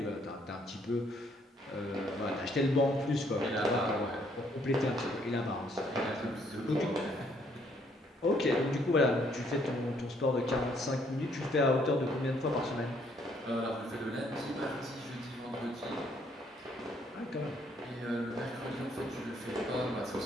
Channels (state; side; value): normal; both; correlation 0.67